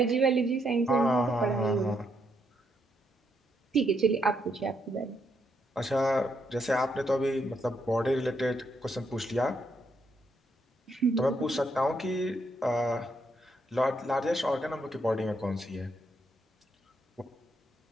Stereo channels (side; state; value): both; normal; correlation 0.77